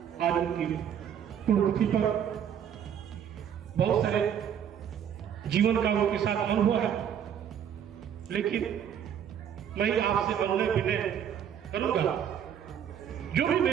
आज उनकी पुण्यतिथि पर बहुत सारे जीवन का उनके साथ अनुभव है, लेकिन मैं आपसे अनुनय विनय करूंगा, जो भी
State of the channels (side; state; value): left; quieter; 8.9 dB